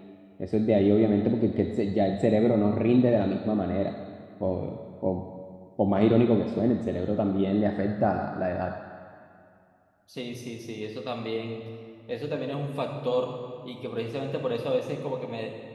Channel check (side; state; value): both; identical; correlation 1.00